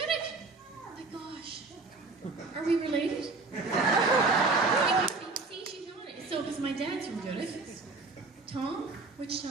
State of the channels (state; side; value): quieter; left; 3.7 dB